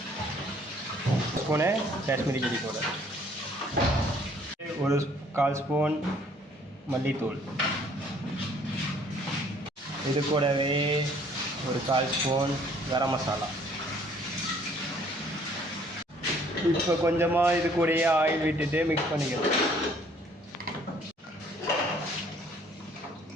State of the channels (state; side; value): normal; both; correlation 0.59